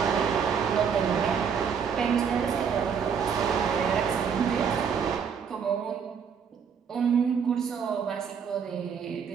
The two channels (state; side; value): quieter; left; 6.9 dB